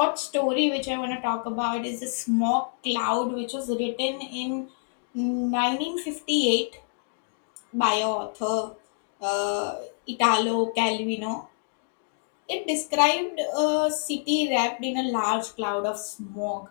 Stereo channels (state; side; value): silent; right; digital silence